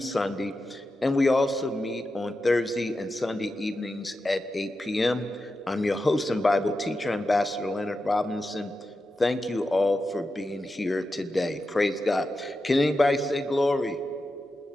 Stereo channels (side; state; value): both; normal; correlation 0.90